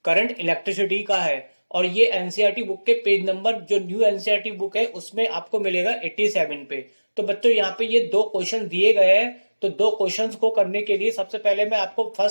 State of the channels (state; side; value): inverted; both; correlation -1.00